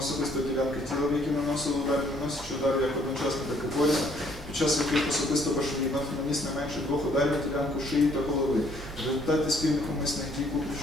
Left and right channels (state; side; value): normal; both; correlation 0.64